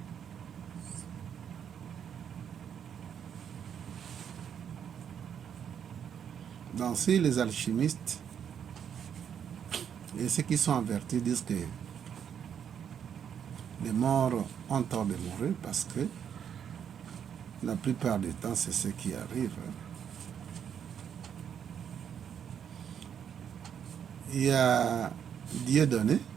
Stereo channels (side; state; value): left; quieter; 8.3 dB